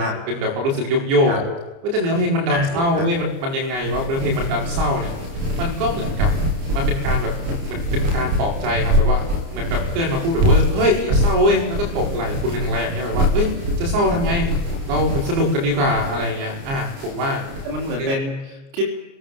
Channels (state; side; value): late; left; 29 ms